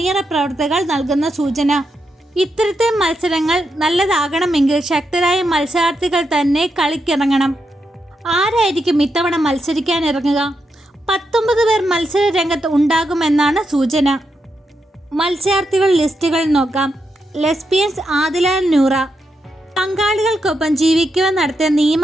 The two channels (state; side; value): normal; both; correlation 0.84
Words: പ്രവർത്തകർ നൽകുന്ന സൂചന. ഇത്തരത്തിൽ മത്സരങ്ങൾ നല്ലതാകണമെങ്കിൽ ശക്തരായ മത്സരാർത്ഥികൾ തന്നെ കളിക്കിറങ്ങണം. ആരായിരിക്കും ഇത്തവണ മത്സരിക്കാൻ ഇറങ്ങുക? 19 പേർ മത്സര രംഗത്ത് ഉണ്ടാകുമെന്നാണ് സൂചന. മത്സരാർത്ഥികൾ ലിസ്റ്റുകൾ നോക്കാം. ലെസ്ബിയൻസ് ആദില നൂറ. പങ്കാളികൾക്കൊപ്പം ജീവിക്കുവാൻ നടത്തിയ നിയമ